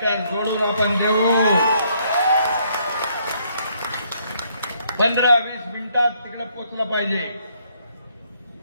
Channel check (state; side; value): inverted; both; correlation -0.69